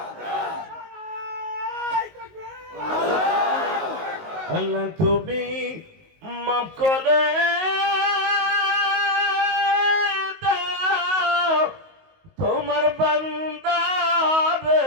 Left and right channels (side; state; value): left; late; 19 ms